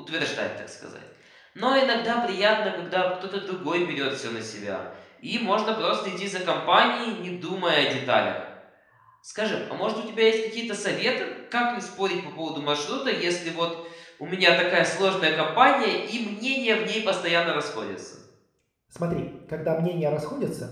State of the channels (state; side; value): identical; both; correlation 1.00